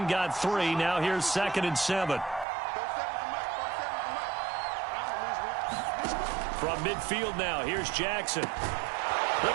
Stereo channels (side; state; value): left; drops out; at 2.5 s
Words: got 3. Now here's 2nd and 7. From midfield now, here's Jackson. The